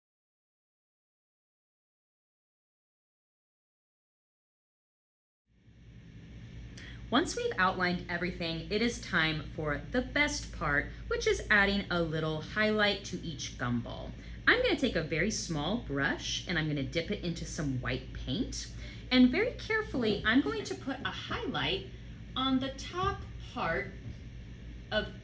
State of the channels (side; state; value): both; identical; correlation 1.00